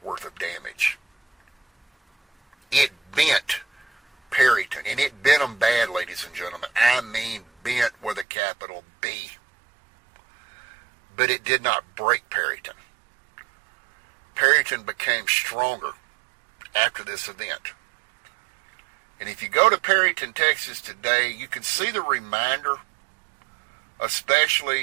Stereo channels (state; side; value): drops out; left; at 8.2 s